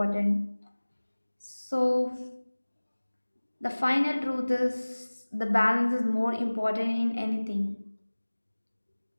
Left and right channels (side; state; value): both; inverted; correlation -1.00